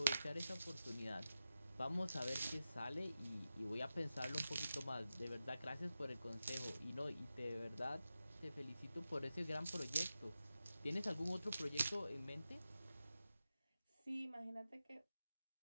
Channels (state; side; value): inverted; both; correlation -0.92